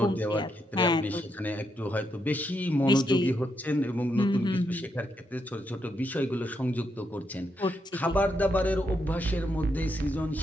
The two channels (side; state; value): both; normal; correlation 0.80